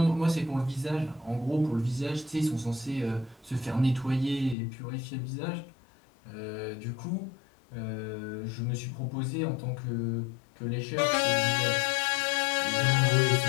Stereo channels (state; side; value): drops out; right; at 4.5 s